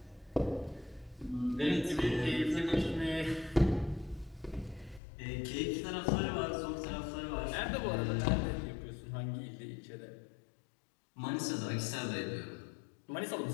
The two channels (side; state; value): right; drops out; at 5.0 s